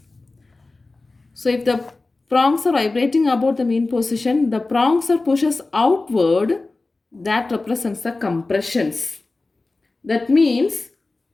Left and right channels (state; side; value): quieter; right; 3.4 dB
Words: So if the prongs are vibrating about the mean position, the prongs are pushes outward, that represents the compressions. That means